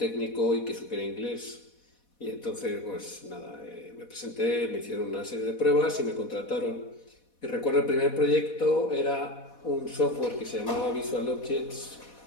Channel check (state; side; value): late; right; 4.1 ms